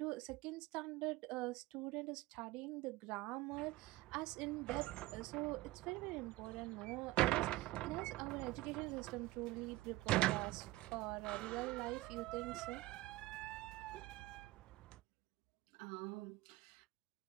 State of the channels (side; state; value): left; quieter; 18.7 dB